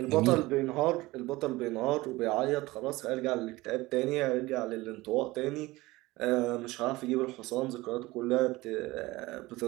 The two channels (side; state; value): left; quieter; 20.0 dB